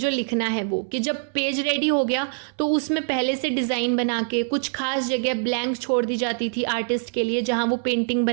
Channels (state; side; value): silent; left; 63 dB below the other